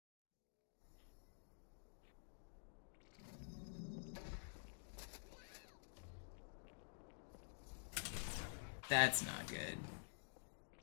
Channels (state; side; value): silent; right; digital silence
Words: That's not good.